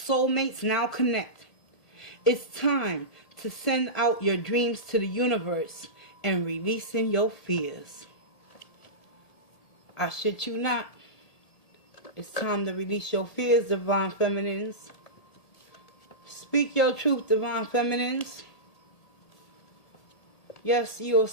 now connect. It's time to send out your dreams to the universe and releasing your fears. I shit you not. It's time to release your fears, divine feminines. Speak your truth, divine feminines. Yes, you're a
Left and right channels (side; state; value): right; late; 1.8 ms